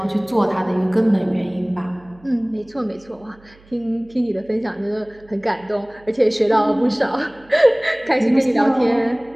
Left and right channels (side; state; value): right; noise; hum, 27 dB below the sound